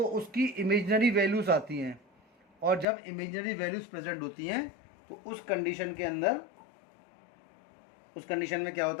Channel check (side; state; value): right; drops out; at 2.9 s